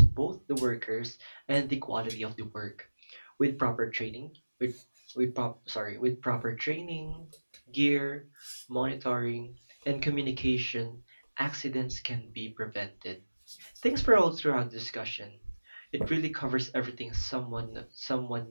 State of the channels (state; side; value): inverted; both; correlation -1.00